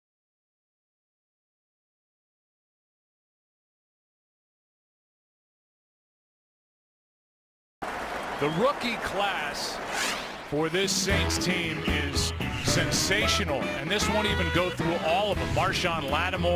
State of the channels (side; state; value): both; identical; correlation 1.00